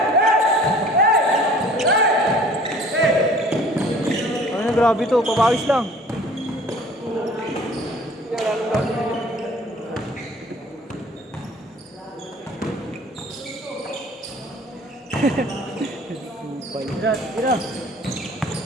Ano na grabe to, papawis lang. Tira, tira.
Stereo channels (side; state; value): both; normal; correlation 0.50